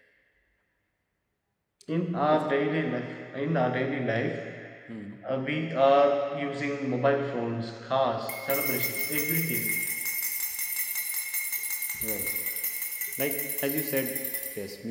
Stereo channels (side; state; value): both; identical; correlation 1.00